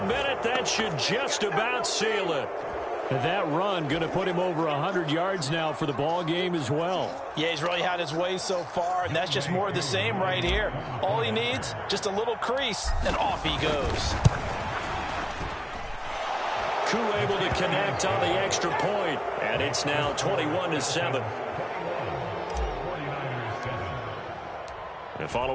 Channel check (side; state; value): both; identical; correlation 1.00